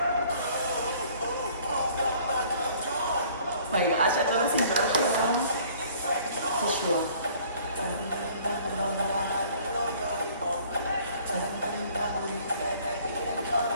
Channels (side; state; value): both; inverted; correlation -0.55